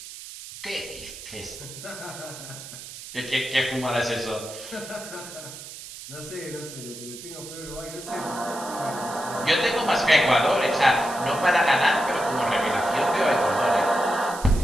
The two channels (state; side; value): noise; right; hiss, 13 dB below the sound